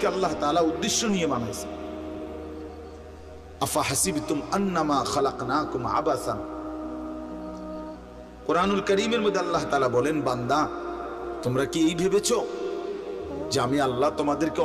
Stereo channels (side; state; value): both; identical; correlation 1.00